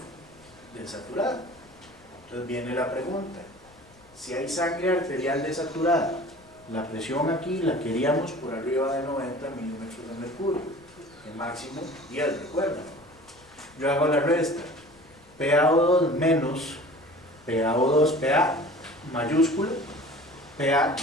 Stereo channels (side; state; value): left; noise; rumble, 29 dB below the sound